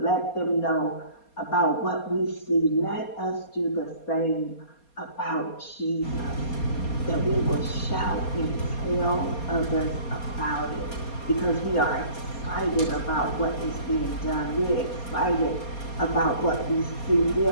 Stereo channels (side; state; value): right; late; 4.2 ms